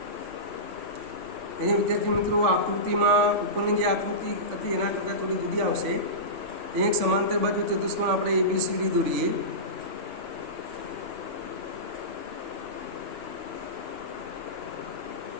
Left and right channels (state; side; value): late; left; 3.4 ms